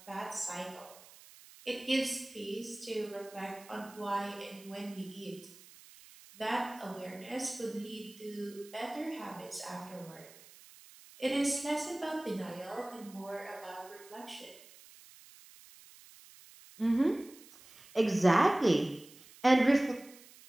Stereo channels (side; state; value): right; noise; hiss, 21 dB below the sound